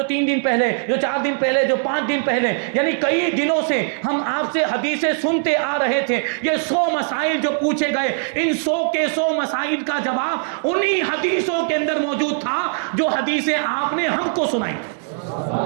3 دن پہلے، جو 4 دن پہلے، جو 5 دن پہلے. یعنی کئی دنوں سے ہم آپ سے حدیثیں سنتے آ رہے تھے. یہ 100 مسائل جو پوچھے گئے، ان 100 کے 100 مسائل کا جواب انہی حدیثوں کے اندر موجود تھا جو حدیثیں آپ نے ہم کو سنائی.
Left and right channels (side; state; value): left; silent; 65 dB below the other